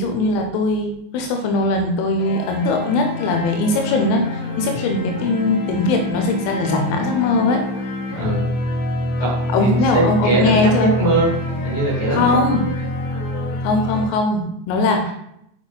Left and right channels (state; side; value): late; right; 24 ms